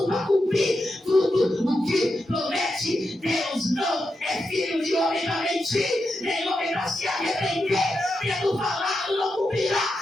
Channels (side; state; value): both; normal; correlation 0.87